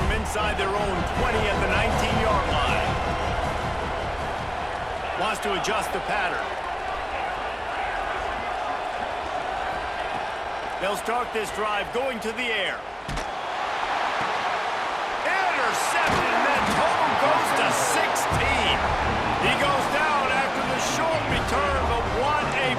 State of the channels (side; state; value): both; identical; correlation 1.00